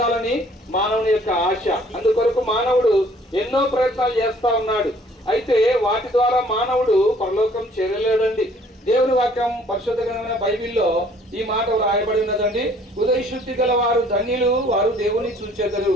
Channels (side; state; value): both; normal; correlation 0.58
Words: మానవుని యొక్క ఆశ. అందుకొరకు మానవుడు ఎన్నో ప్రయత్నాలు చేస్తా ఉన్నాడు. అయితే వాటి ద్వారా మానవుడు పరలోకం చేరలేడండి. దేవుని వాక్యం పరిశుద్ధ గ్రంథమైన బైబిల్లో ఈ మాట రాయబడి ఉన్నదండి. హృదయ శుద్ధి గల వారు ధన్యులు, వారు దేవుని చూచెదరు.